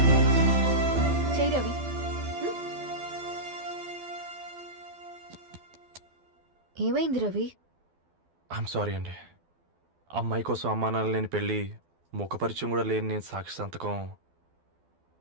ఏమైంది రవి? ఐఎమ్ సారీ అండి. అమ్మాయి కోసం అమ్మానాలు లేని పెళ్ళి, ముఖపరిచయం కూడా లేని నేను సాక్షి సంతకం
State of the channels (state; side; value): late; left; 12 ms